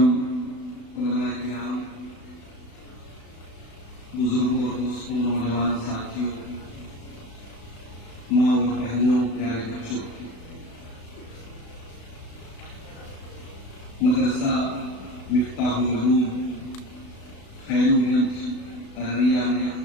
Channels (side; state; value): right; late; 36 ms